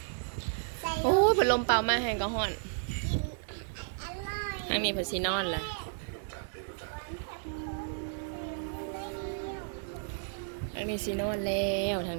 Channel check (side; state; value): left; silent; digital silence